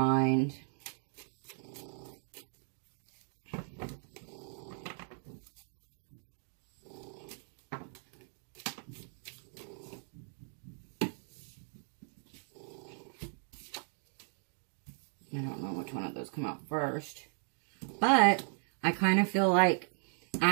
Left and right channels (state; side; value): silent; left; 53 dB below the other